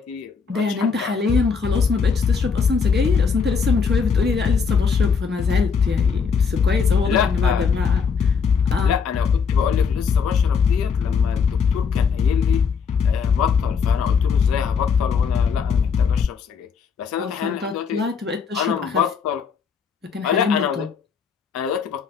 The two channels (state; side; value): quieter; right; 5.9 dB